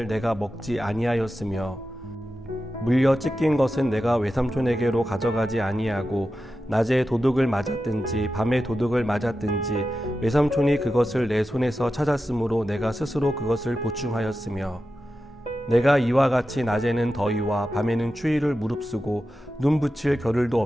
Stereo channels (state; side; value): normal; both; correlation 0.91